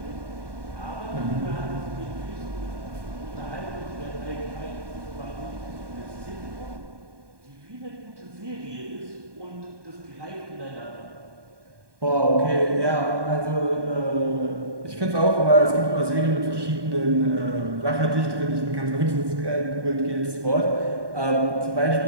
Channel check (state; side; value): late; left; 1.2 ms